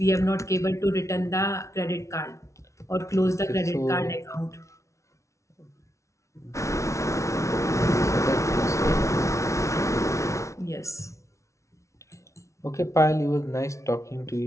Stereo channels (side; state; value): right; late; 0.14 ms